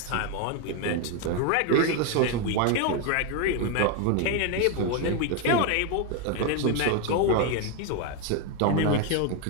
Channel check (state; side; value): different; both; correlation 0.01